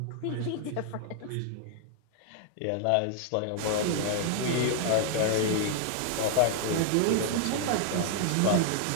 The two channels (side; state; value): both; different; correlation 0.00